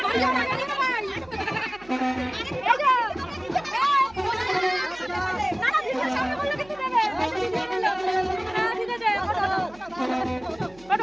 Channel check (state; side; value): noise; right; hum, 25 dB below the sound